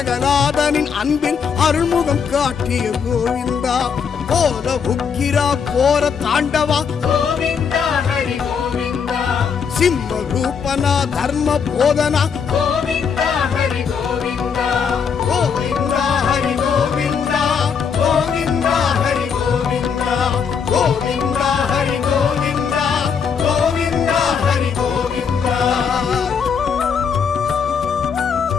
அன்பில் அருள்முகம் காட்டிய கோவிந்தா. கோல உக்கிரா கோர தாண்டவா கோவிந்தா ஹரி கோவிந்தா சிம்ம ரூபனா தர்ம போதனா கோவிந்தா ஹரி கோவிந்தா கோவிந்தா ஹரி கோவிந்தா கோவிந்தா ஹரி கோவிந்தா கோவிந்தா ஹரி கோவிந்தா கோவிந்தா ஹரி கோவிந்தா.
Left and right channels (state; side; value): quieter; right; 6.5 dB